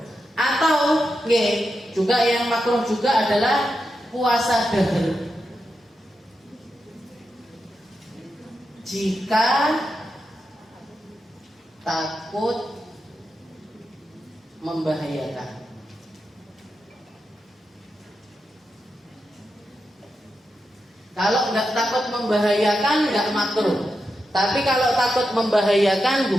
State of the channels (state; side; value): normal; both; correlation 0.88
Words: Atau juga yang makruh juga adalah puasa dahr. Jika takut membahayakan. Kalau nggak takut membahayakan nggak makruh. Tapi kalau takut membahayakan